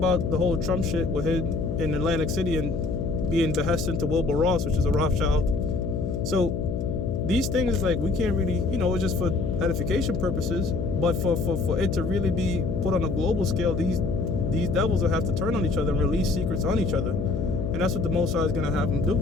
the whole Trump shit with him in Atlantic City and being behesting to Wilbur Ross, which is a Rothschild. So these things, like, we can't really, it's just for edification purposes. But for it to really be put on a global scale, these devils will have to turn on each other and release secrets on each other. And that's what the Most High is going to have them do.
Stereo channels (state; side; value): noise; left; hum, 2 dB below the sound